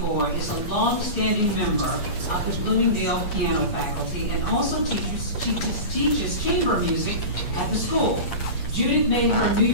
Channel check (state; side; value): late; right; 8.5 ms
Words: is a long-standing member of the Bloomingdale piano faculty and also teaches chamber music at the school. Judith made her New